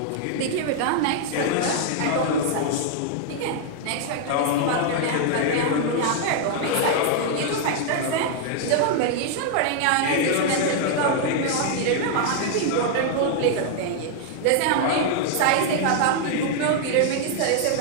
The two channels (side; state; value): both; different; correlation 0.00